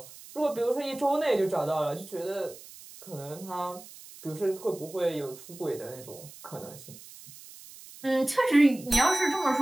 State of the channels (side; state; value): right; noise; hiss, 18 dB below the sound